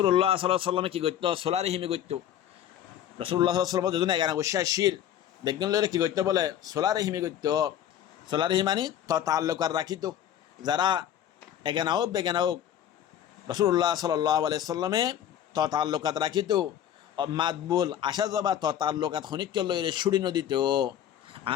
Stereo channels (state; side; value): quieter; right; 10.5 dB